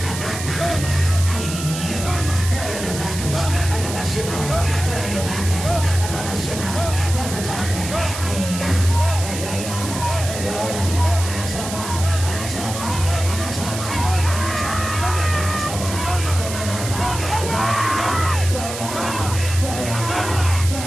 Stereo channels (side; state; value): right; noise; hiss, 8 dB below the sound